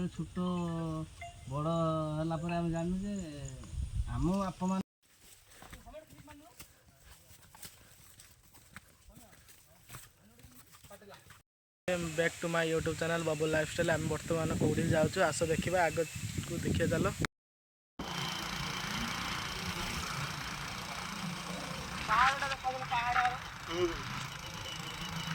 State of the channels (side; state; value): both; identical; correlation 1.00